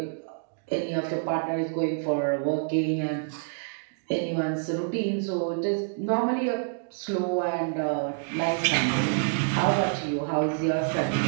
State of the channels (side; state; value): left; silent; digital silence